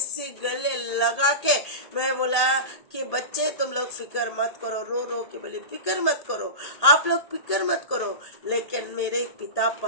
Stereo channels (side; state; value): right; late; 1.8 ms